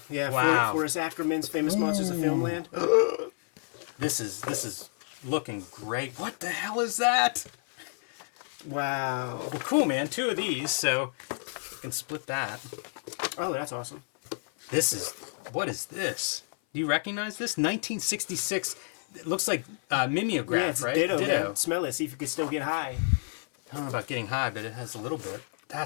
Wow. Forrest Ackerman's Famous Monsters of Filmland. This is looking great. What the hell is that? Wow. Well, cool, man. 2 of these, so you can split that. Oh, that's awesome. What is this? Do you recognize this? 1966. It looks like mimeograph, Yeah, it's right? ditto, man. Smell it. See if you could still get high. I don't know about getting high, but it has a little bit.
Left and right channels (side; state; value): right; silent; 56 dB below the other